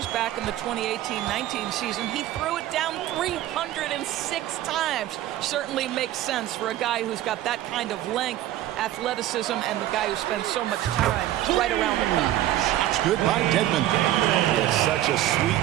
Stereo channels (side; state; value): left; quieter; 13.8 dB